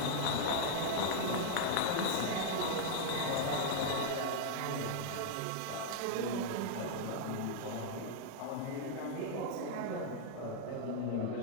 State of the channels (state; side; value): different; both; correlation 0.00